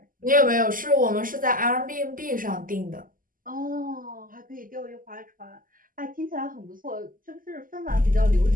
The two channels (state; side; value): late; left; 0.41 ms